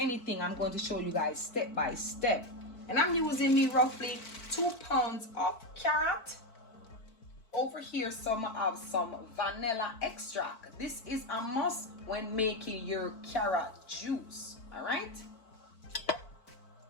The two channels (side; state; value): right; late; 4.5 ms